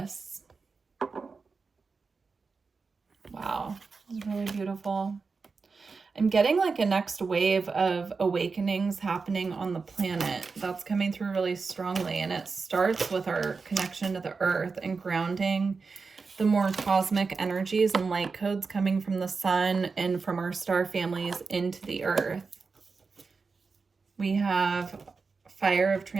Wow, it's really beautiful. I'm getting like a next wave of awakenings happening on the planet. That's coming through really strongly, and it starts with our connection to the earth and grounding the more cosmic energies and light codes coming from the sun and from our star families into the earth. We have fire of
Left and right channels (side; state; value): left; quieter; 4.6 dB